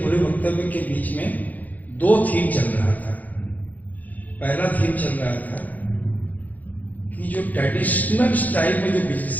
वक्तव्य के बीच में दो थीम चल रहा था। पहला थीम चल रहा था कि जो ट्रेडिशनल स्टाइल में जो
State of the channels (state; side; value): late; right; 0.080 ms